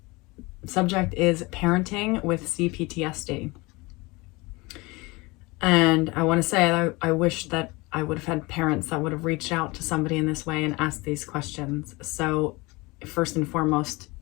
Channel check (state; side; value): quieter; right; 24.0 dB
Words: subject is parenting with CPTSD. And I want to say I wish that I would have had parents that would have reached out to somebody in this way and asked these questions. So first and foremost,